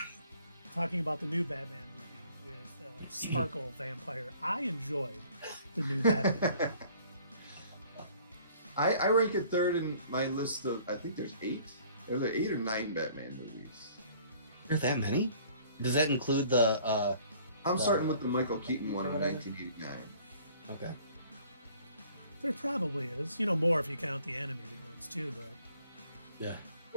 Talking about the new Batman movie with Sparkle Vampire. I enjoyed the new Batman movie. I rank it third in my list of, I think there's 8. There's 8 or 9 Batman movies. Are there that many? Does that include the... I'm starting with the Michael Keaton one in 1989. Okay. There probably is. More if you count the animated ones too, but Yeah.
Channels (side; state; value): both; inverted; correlation -0.55